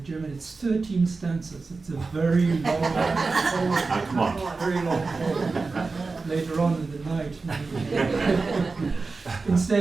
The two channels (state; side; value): quieter; left; 4.0 dB